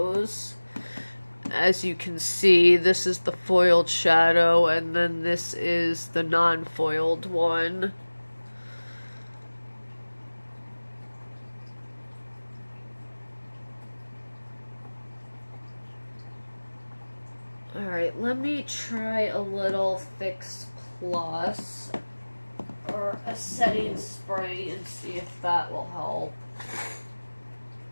As you can see, this is the foiled shadow, and then this is the non-foiled one. Alright, let me try a little Fix Plus or a setting spray and see if that will help.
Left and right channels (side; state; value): both; inverted; correlation -1.00